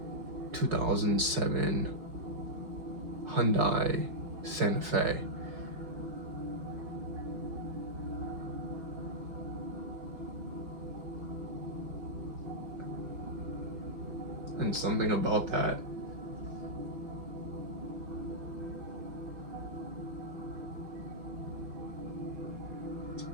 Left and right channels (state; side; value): late; left; 4.8 ms